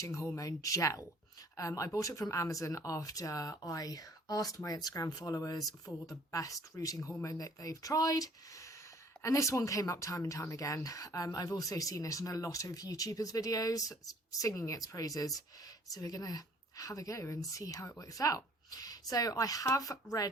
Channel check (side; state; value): both; normal; correlation 0.56